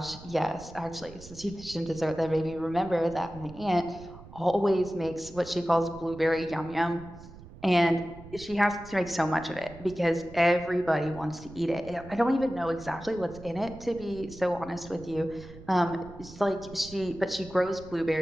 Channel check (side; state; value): right; noise; rumble, 17 dB below the sound